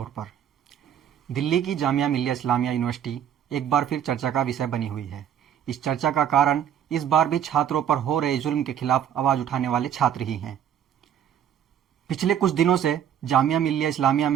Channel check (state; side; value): quieter; left; 9.5 dB